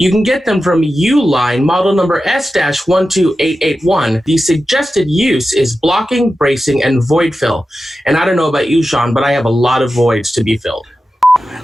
can get them from Uline, model number S-12881. The suggested use is blocking, bracing, and void fill. And I don't know about you, Sean, but I have a lot of voids to be filled. I'd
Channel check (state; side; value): normal; both; correlation 0.92